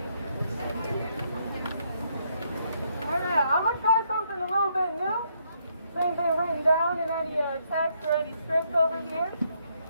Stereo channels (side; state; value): both; inverted; correlation -0.74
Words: Alright, I'm gonna try something a little bit new. Ain't been written down in any text or any script over here.